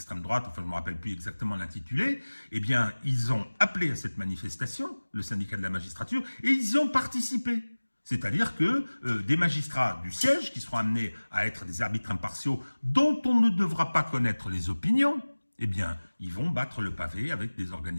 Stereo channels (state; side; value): inverted; both; correlation -1.00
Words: droite, enfin je ne me rappelle plus exactement l'intitulé, eh bien ils ont appelé à cette manifestation, le syndicat de la magistrature, et ils y ont participé. C'est-à-dire que des magistrats du siège, qui seront amenés à être des arbitres impartiaux, dont on ne devra pas connaître les opinions, eh bien, ils vont battre le pavé avec des